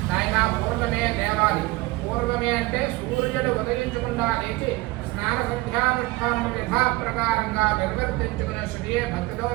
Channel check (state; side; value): quieter; left; 20.8 dB